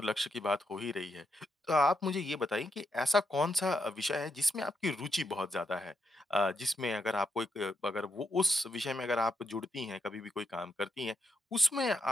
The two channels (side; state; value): both; normal; correlation 0.81